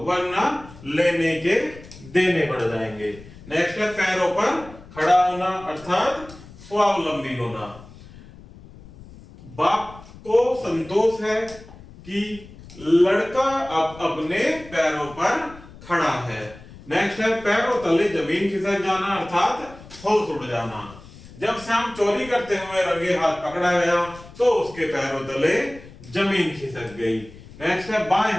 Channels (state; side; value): noise; left; rumble, 19 dB below the sound